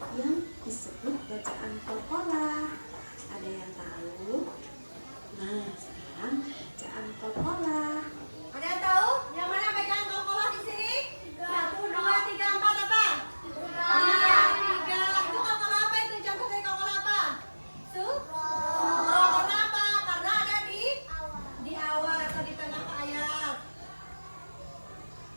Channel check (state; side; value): inverted; both; correlation -1.00